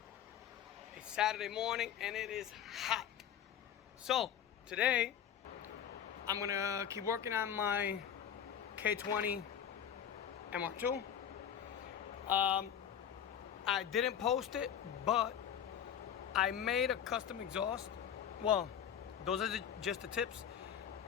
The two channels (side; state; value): right; quieter; 9.1 dB